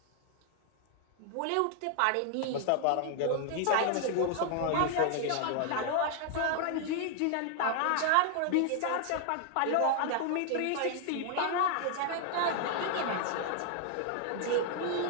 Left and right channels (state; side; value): different; both; correlation 0.00